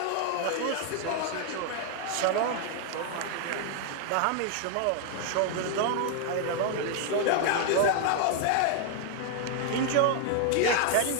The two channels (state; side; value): different; both; correlation 0.00